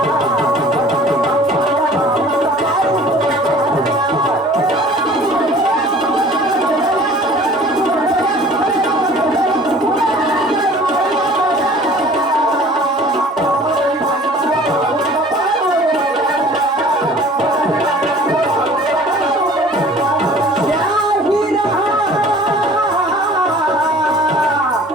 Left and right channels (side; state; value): both; normal; correlation 0.48